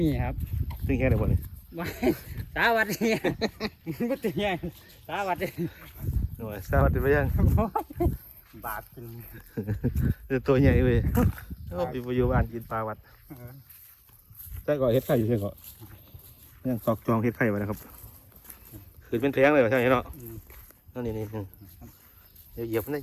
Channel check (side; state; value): both; identical; correlation 1.00